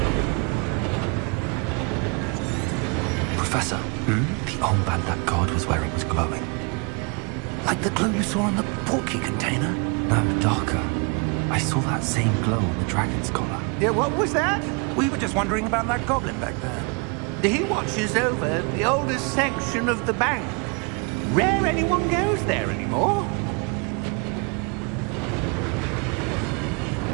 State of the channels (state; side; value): quieter; left; 33.1 dB